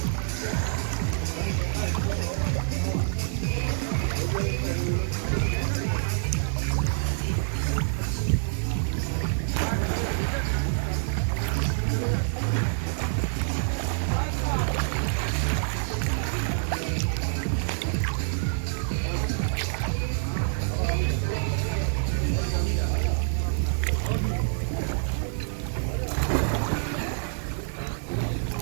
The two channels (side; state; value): left; silent; digital silence